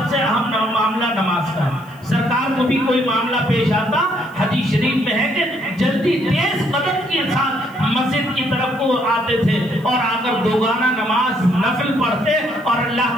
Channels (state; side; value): noise; left; hiss, 29 dB below the sound